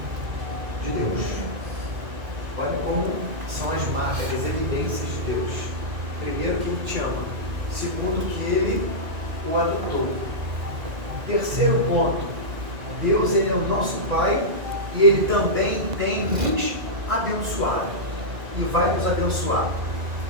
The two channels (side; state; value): left; late; 2.1 ms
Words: de Deus. Olha como são as marcas, as evidências de Deus. Primeiro, que Ele te ama. Segundo, que Ele o adotou. Terceiro ponto, Deus, Ele é o nosso Pai e Ele também tem nos abençoado e vai nos abençoar.